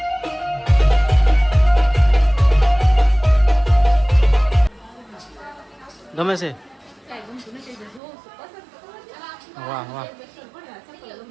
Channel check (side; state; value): left; drops out; at 8.0 s